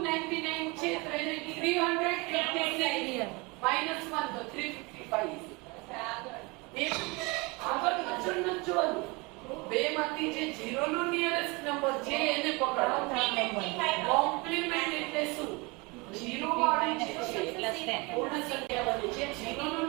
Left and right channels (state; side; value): quieter; left; 26.7 dB